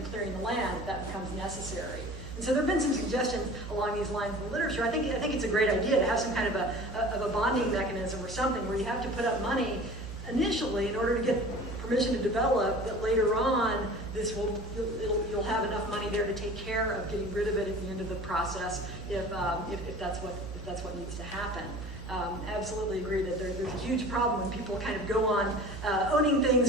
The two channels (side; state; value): both; normal; correlation 0.41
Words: clearing the land if that becomes necessary. And so there have been some suggestions along these lines in the literature. I think it's a great idea to have some kind of a bonding mechanism or something where you have to put up money initially in order to get permission to develop, that later on you'll have enough money there to take care of getting rid of it at the end of the process if that's what needs to happen. Absolutely agree that there's a huge huge problem when people kind of go on owning things